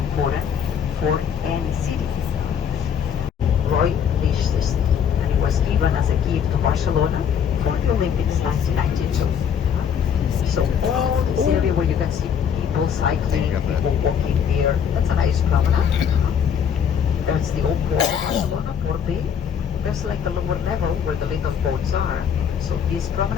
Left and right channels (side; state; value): right; quieter; 7.8 dB